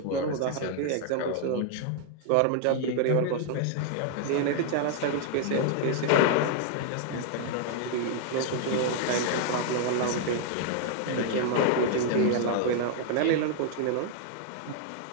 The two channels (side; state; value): both; different; correlation -0.01